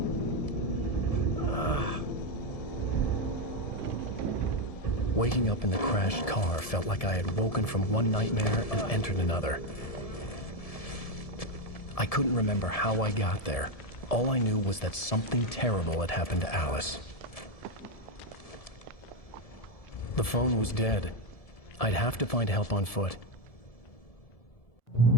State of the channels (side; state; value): right; late; 1.7 ms